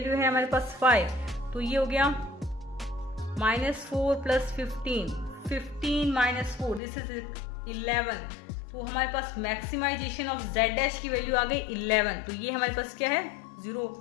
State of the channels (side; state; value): right; drops out; at 6.8 s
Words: है हमारे पास 5, तो ये हो गया -4 + 15, 15 - 4, दिस इज 11। तो हमारे पास मैक्सिमाइजेशन ऑफ z डैश की वैल्यू आ गई 11। तो ये हमारे पास क्या है 0,